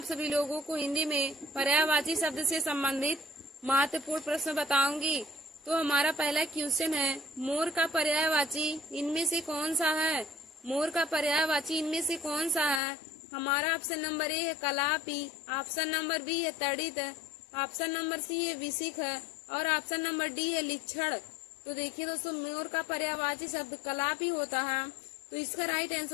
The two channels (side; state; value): right; drops out; at 12.8 s